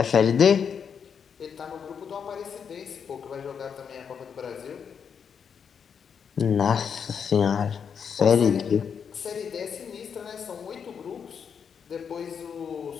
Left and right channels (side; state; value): right; quieter; 7.0 dB